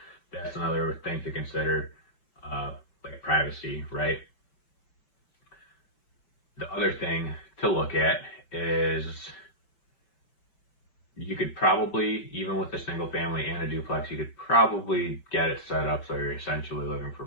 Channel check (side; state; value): right; late; 5.2 ms